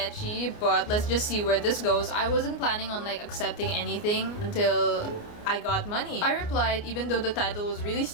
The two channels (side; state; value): right; late; 29 ms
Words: but let's just see where this goes. I wasn't planning on like accepting anything until I got money. I replied even though the title was really